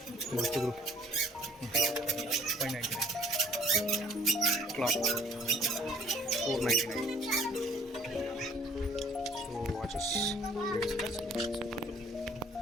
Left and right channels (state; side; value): normal; both; correlation 0.56